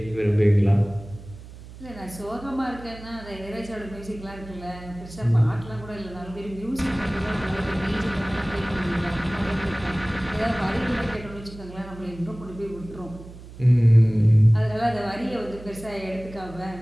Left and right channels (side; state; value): right; noise; hum, 16 dB below the sound